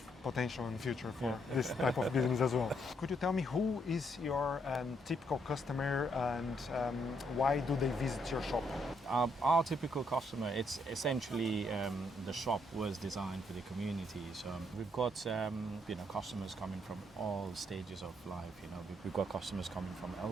potential in the future for this type of business as well. Could you tell me who is your typical customer, and why do they visit your shop? Our typical customer, it's essentially the shop was designed for the community. So we've got customers coming from all stages of life. We've got customers coming from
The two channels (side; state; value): both; normal; correlation 0.74